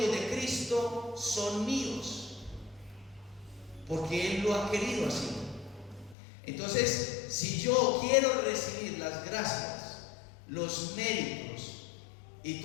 de Cristo son míos, porque Él lo ha querido así. Entonces, si yo quiero recibir las gracias, los méritos y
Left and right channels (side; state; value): right; drops out; at 6.2 s